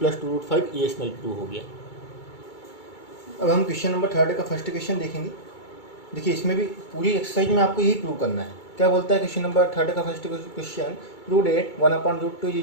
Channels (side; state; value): right; late; 2.3 ms